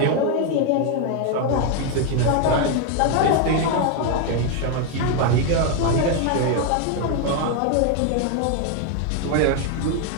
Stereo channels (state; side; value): different; both; correlation 0.01